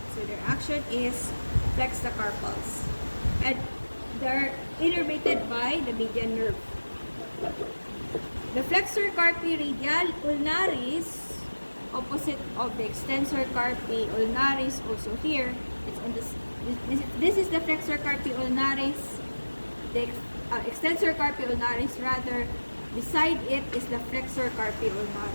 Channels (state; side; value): inverted; both; correlation -1.00